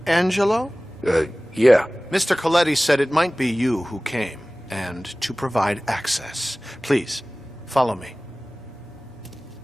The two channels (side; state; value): both; normal; correlation 0.98